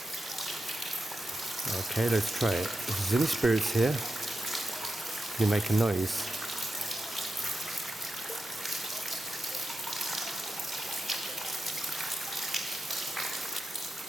Okay, let's try it. If there's any spirits here, can you make a noise?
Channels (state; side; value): normal; both; correlation 0.90